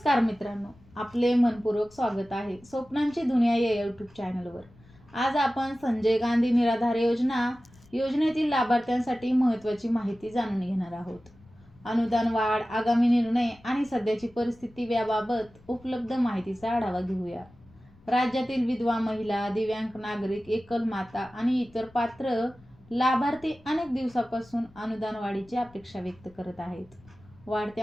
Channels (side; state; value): left; noise; rumble, 26 dB below the sound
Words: मित्रांनो, आपले मनपूर्वक स्वागत आहे स्वप्नांची दुनिया या यूट्यूब चॅनलवर. आज आपण संजय गांधी निराधार योजनेतील लाभार्थ्यांसाठी महत्त्वाची माहिती जाणून घेणार आहोत. अनुदान वाढ, आगामी निर्णय आणि सध्याची परिस्थिती याबाबत उपलब्ध माहितीचा आढावा घेऊया. राज्यातील विधवा महिला, दिव्यांग नागरिक, एकल माता आणि इतर पात्र लाभार्थी अनेक दिवसापासून अनुदान वाढीची अपेक्षा व्यक्त करत आहेत.